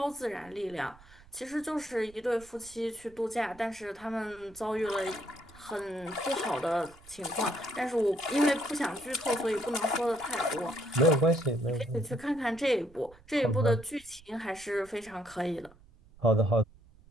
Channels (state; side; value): noise; right; rumble, 25 dB below the sound